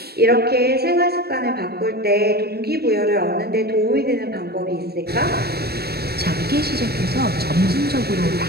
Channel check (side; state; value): left; late; 0.46 ms